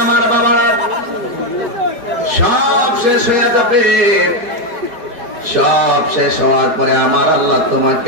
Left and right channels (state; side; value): late; left; 4.7 ms